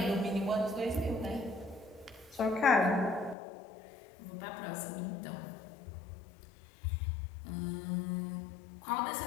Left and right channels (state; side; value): drops out; right; at 3.4 s